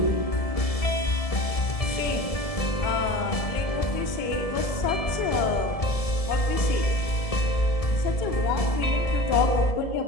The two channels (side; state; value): right; late; 1.7 ms